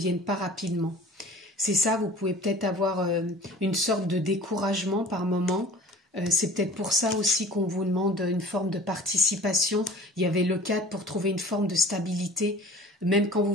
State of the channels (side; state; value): both; normal; correlation 0.45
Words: pas rapidement. C'est ça, vous pouvez peut-être avoir une sorte de découragement par moment. C'est peut-être pour ça aussi qu'on vous demande une forme de participation. Il y avait le cadre pour trouver une forme de stabilité. Même quand